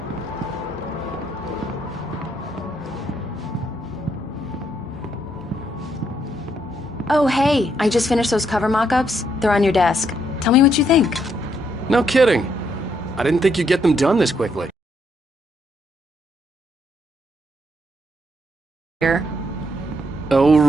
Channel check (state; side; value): normal; both; correlation 0.74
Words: Oh, hey, I just finished those cover mock-ups. They're on your desk. Tell me what you think. No kidding. I didn't think you'd get them done this quickly. Here. Oh,